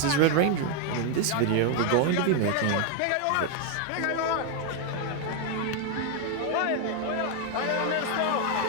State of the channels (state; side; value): different; both; correlation 0.01